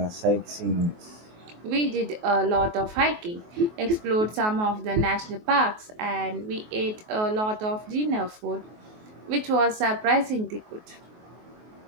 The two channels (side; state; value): left; late; 23 ms